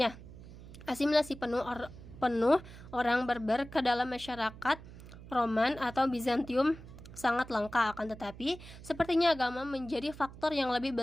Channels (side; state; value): right; noise; hum, 16 dB below the sound